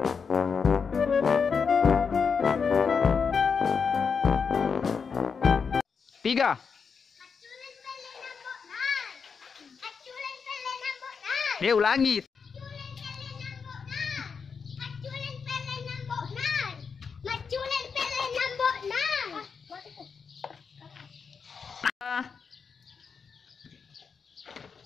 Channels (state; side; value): quieter; right; 5.8 dB